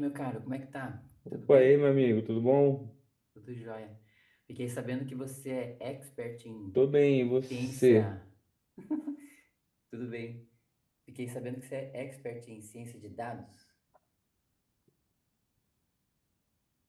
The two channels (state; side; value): identical; both; correlation 1.00